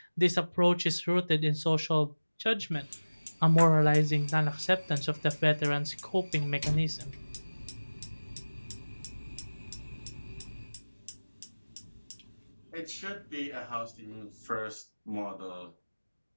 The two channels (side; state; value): both; inverted; correlation -1.00